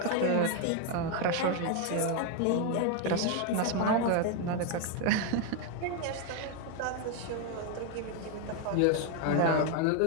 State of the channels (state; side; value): different; both; correlation 0.01